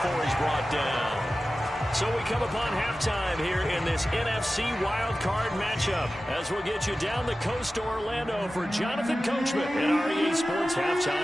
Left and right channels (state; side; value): normal; both; correlation 0.95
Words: he's brought down. So we come upon halftime here in this NFC wildcard matchup as we'll get you down the coast to Orlando for Jonathan Coachman in our EA Sports